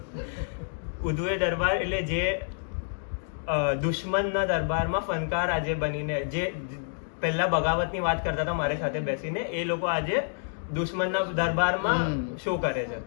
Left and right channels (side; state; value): right; silent; digital silence